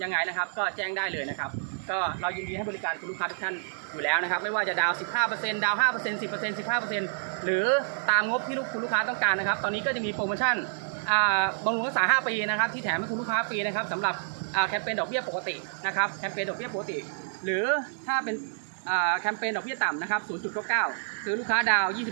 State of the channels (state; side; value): silent; left; digital silence